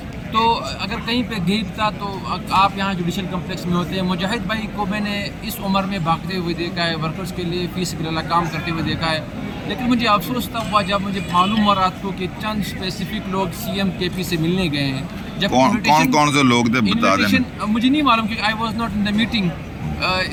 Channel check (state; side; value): identical; both; correlation 1.00